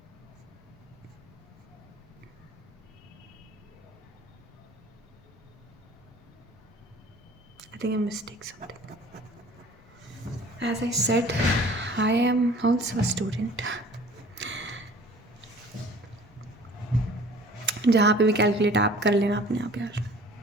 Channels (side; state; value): both; normal; correlation 0.48